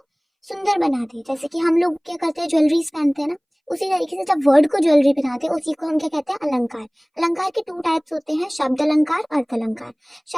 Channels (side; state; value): both; identical; correlation 1.00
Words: सुंदर बना दे, जैसे कि हम लोग क्या करते हैं, ज्वेलरीज पहनते हैं ना, उसी तरीके से जब वर्ड को ज्वेलरी पहनाते हैं उसी को हम क्या कहते हैं, अलंकार। अलंकार के टू टाइप्स होते हैं, शब्द अलंकार, अर्थ अलंकार।